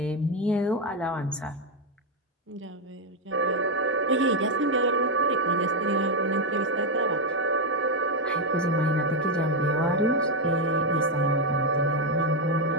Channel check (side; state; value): both; normal; correlation 0.04